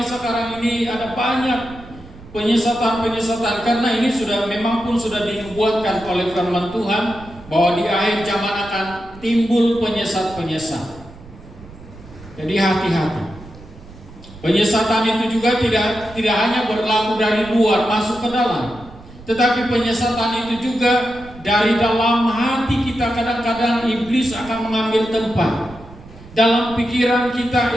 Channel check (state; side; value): noise; right; rumble, 19 dB below the sound